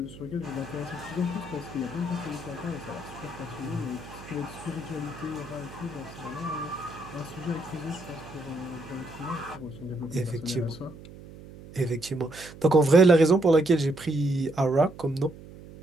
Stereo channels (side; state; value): right; noise; hum, 17 dB below the sound